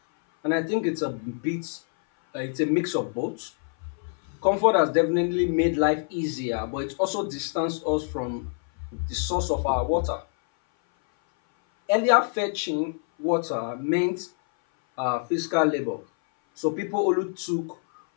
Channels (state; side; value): silent; right; 58 dB below the other